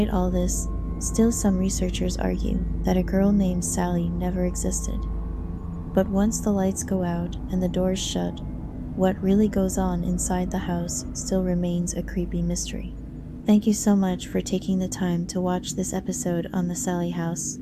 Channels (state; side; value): identical; both; correlation 1.00